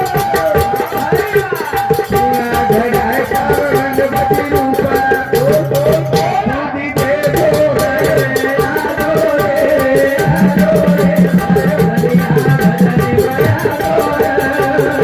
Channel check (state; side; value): identical; both; correlation 1.00